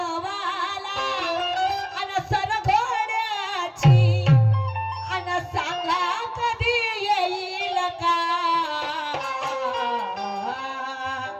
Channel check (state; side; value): identical; both; correlation 1.00